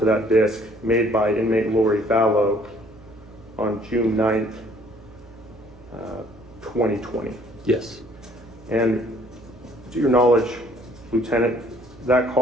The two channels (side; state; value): right; noise; hum, 24 dB below the sound